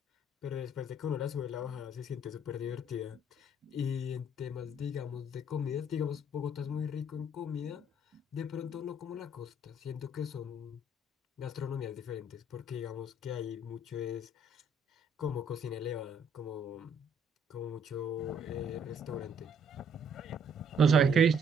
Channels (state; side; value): normal; both; correlation 0.64